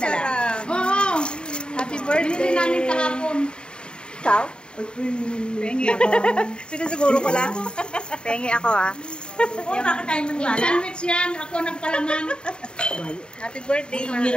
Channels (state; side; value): late; right; 0.050 ms